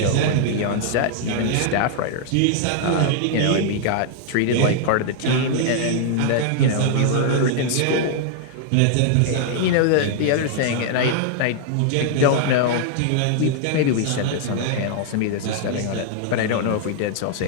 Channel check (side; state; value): both; different; correlation 0.00